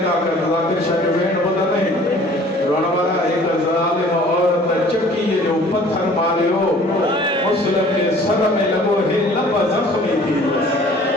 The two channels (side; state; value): both; normal; correlation 0.51